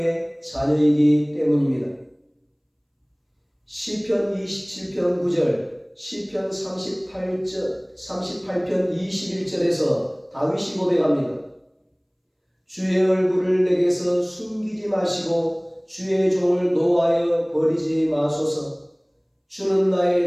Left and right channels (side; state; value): both; identical; correlation 1.00